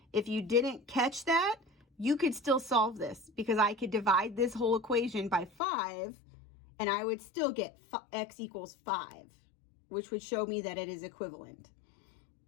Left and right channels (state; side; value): drops out; right; at 5.5 s